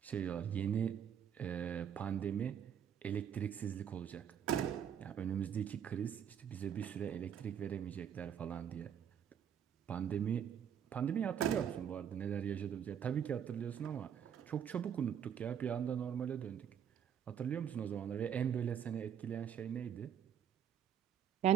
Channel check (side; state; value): left; quieter; 8.6 dB